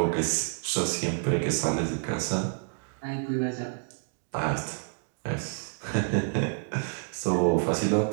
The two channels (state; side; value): silent; left; 58 dB below the other